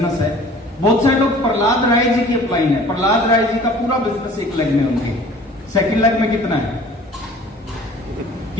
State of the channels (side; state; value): both; normal; correlation 0.48